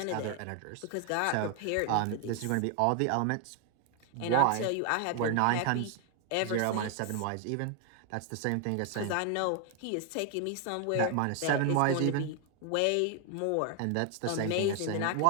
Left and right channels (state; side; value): different; both; correlation 0.00